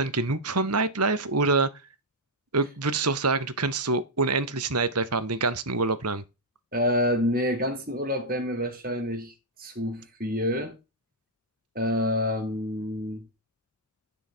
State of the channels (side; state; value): both; normal; correlation -0.06